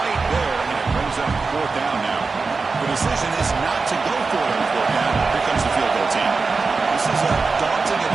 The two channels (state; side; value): quieter; left; 4.3 dB